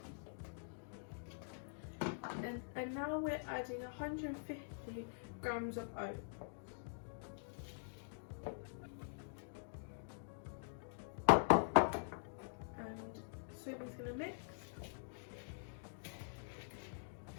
And now we're adding 150 grams of oats. And Sophie's going to mix.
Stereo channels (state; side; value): silent; right; digital silence